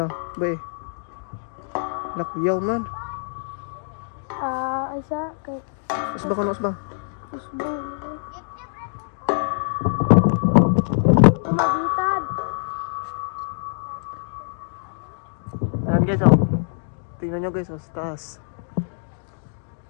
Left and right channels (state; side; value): silent; right; digital silence